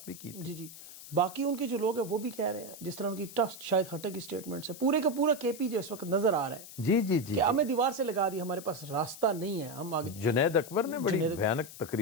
بھی کی. جی, باقی ان کے جو لوگ ہیں وہ بھی کہہ رہے ہیں, جس طرح ان کی ٹف شاید ہٹے کی سٹیٹمنٹس ہے, پورے کا پورا کے پی جو اس وقت نظر آ رہا ہے. جی کہ ہمیں دیوار سے لگا دی, ہمارے پاس راستہ نہیں ہے, ہم آگے. جنید اکبر نے بڑی بھیانک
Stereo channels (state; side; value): noise; left; hiss, 15 dB below the sound